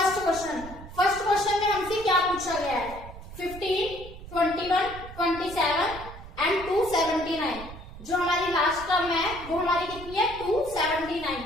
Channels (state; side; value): noise; right; rumble, 14 dB below the sound